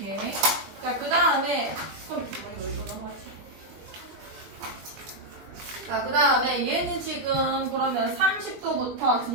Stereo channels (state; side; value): late; left; 21 ms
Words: 자, 그 다음에 자, 그 다음에 얘는 지금 그러면 30도부터